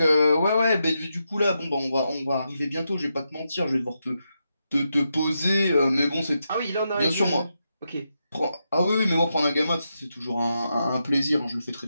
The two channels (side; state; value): both; inverted; correlation -0.85